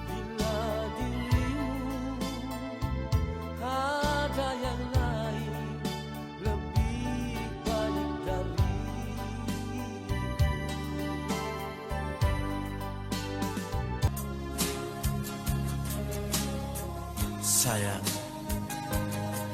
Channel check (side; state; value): both; identical; correlation 1.00